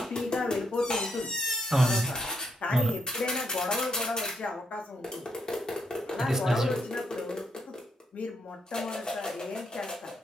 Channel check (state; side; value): normal; both; correlation 0.76